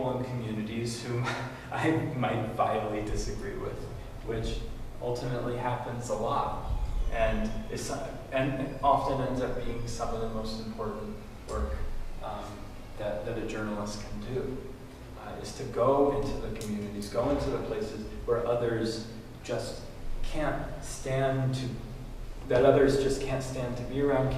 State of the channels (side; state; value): both; identical; correlation 1.00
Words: and communities whom I might vitally disagree with, which ultimately happens a lot. And often ends up being some of the most important work that a journalist can do, is to go into the communities, go into the places where others just can't stand to, that others just can't stand to be around,